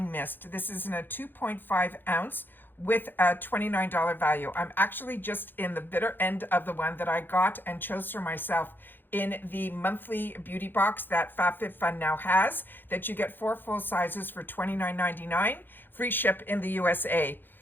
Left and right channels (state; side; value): late; right; 0.095 ms